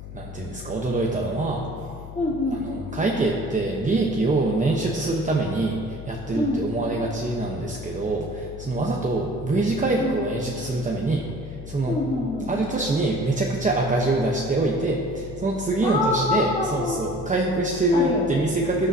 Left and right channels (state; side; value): noise; left; hum, 12 dB below the sound